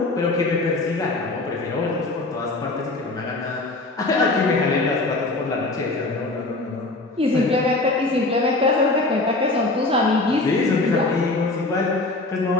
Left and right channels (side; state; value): right; quieter; 3.1 dB